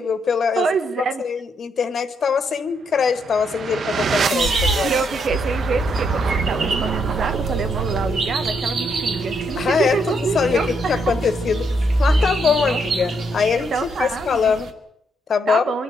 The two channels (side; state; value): both; normal; correlation 0.76